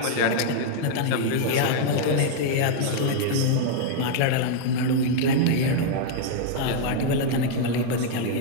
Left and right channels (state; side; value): different; both; correlation -0.01